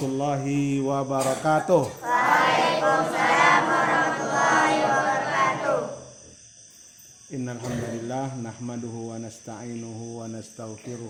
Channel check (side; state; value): both; identical; correlation 1.00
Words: wabarakatuh. Waalaikumsalam warahmatullahi wabarakatuh. Innal hamdalillah nahmaduhu wa nasta'inuhu wa